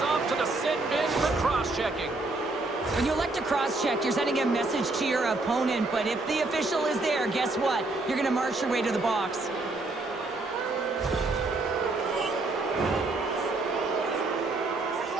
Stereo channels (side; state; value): left; quieter; 3.1 dB